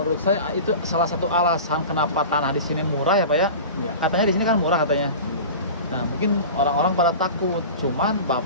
saya itu salah satu alasan kenapa tanah di sini murah ya Pak ya. Ya. Katanya di sini kan murah katanya. Nah mungkin orang-orang pada takut, cuman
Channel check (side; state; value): both; inverted; correlation -0.34